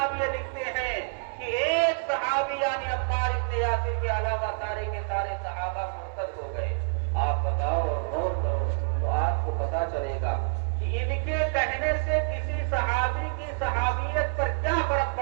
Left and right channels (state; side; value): silent; left; 60 dB below the other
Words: لکھتے ہیں کہ ایک صحابی یعنی عمار بن یاسر کے علاوہ سارے کے سارے صحابہ مرتد ہو گئے۔ آپ بتاؤ اور غور کرو تو آپ کو پتا چلے گا کہ ان کے کہنے سے کسی صحابی کی صحابیت پر کیا فرق